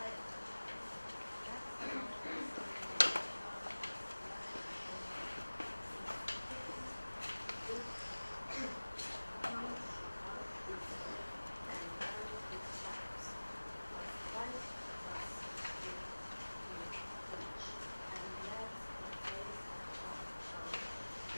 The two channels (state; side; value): inverted; both; correlation -1.00